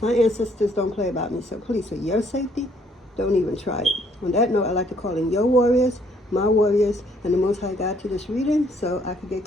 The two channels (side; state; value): both; normal; correlation 0.65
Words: My ancestors don't play about me, so please, for your safety, don't even try it. On that note, I like to call in your warriors, my warriors, and the Most High God to this reading so I can get